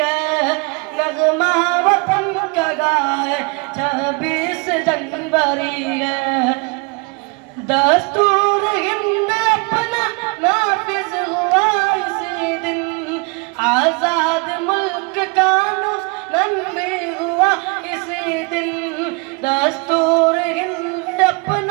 है। नगमा वतन का गाए 26 जनवरी है। दस्तूर हिंद अपना नाफिज हुआ इसी दिन। आजाद मुल्क कानून भी हुआ इसी दिन। दस्तूर हिंद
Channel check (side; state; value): left; quieter; 31.5 dB